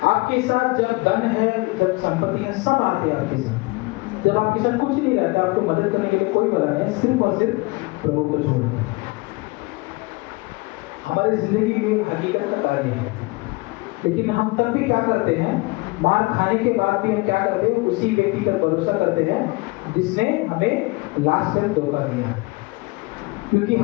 आपके साथ जब धन है, जब संपत्ति है, सब आते हैं आपके साथ। जब आपके साथ कुछ नहीं रहता, आपको मदद करने के लिए कोई बना नहीं, सिर्फ और सिर्फ प्रभु को छोड़। हमारी जिंदगी में हकीकत का कार्य है, लेकिन हम तब भी क्या करते हैं? मार खाने के बाद भी हम क्या करते हैं? उसी व्यक्ति पर भरोसा करते हैं जिसने हमें लास्ट में धोखा दिया। क्योंकि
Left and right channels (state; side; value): quieter; right; 24.6 dB